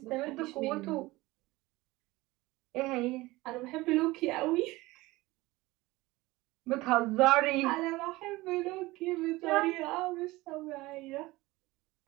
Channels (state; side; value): quieter; left; 20.1 dB